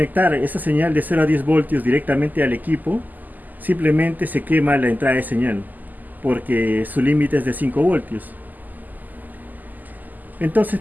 esa señal de 0 a 10 voltios directamente al equipo, simplemente se quema la entrada de señal, porque su límite es de 5 voltios. Entonces,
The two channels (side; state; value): left; late; 0.084 ms